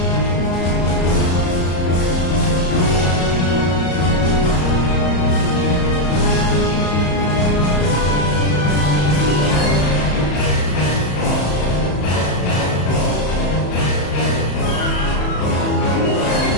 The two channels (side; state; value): right; late; 34 ms